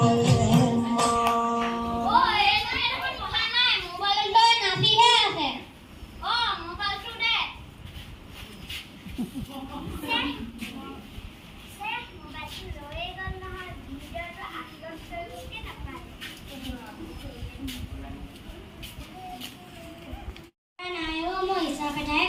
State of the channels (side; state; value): both; identical; correlation 1.00